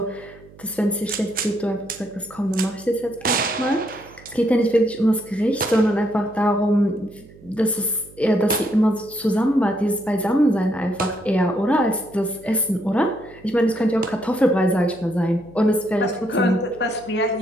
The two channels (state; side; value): noise; right; hum, 23 dB below the sound